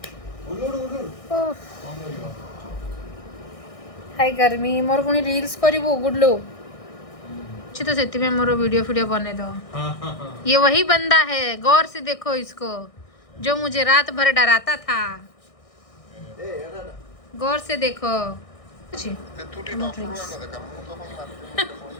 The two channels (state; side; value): late; right; 1.6 ms